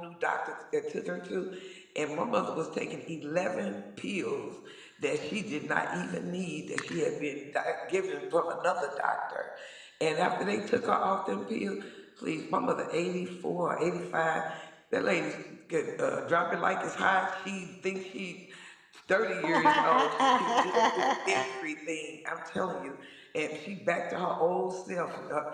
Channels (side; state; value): both; identical; correlation 1.00